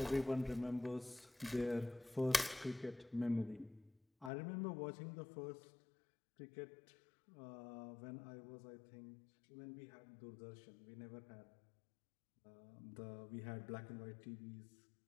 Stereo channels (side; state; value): right; drops out; at 4.3 s